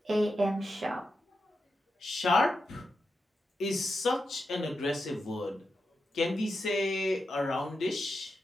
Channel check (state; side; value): normal; both; correlation 0.88